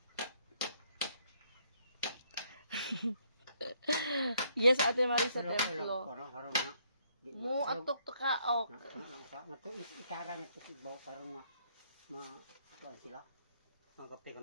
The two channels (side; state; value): both; inverted; correlation -0.69